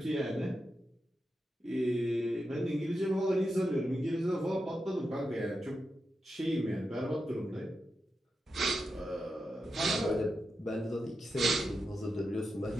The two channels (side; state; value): both; normal; correlation 0.88